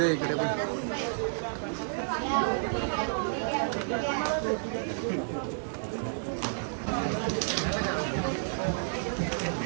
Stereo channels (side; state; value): left; silent; digital silence